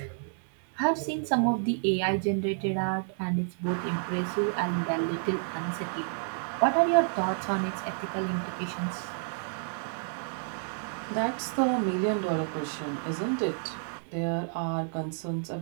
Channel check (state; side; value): silent; left; digital silence